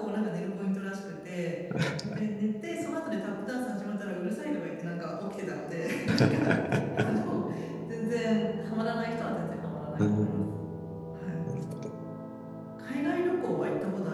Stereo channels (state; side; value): identical; both; correlation 1.00